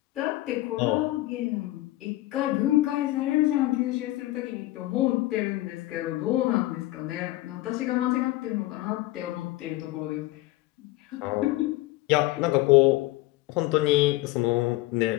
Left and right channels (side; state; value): right; quieter; 17.9 dB